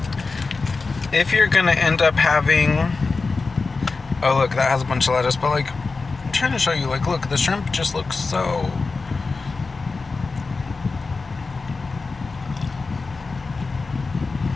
if you're gonna end up having, oh look, that has a bunch of lettuce, but like, I'm trying to show you, like, look, the shrimp just looks so,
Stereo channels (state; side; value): quieter; right; 4.1 dB